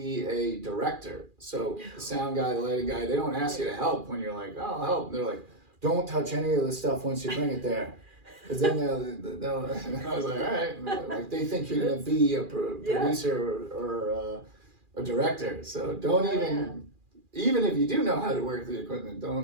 a director. So the sound guy, the lighting guy, they don't ask you to help when you're like, oh, I'll help. They're like, don't touch any of the stuff once you bring it there. Because then they'll and I was like, all right. Like, they think you're going to be a producer or a director. So don't even if you do know how to work the equipment,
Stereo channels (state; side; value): late; left; 2.4 ms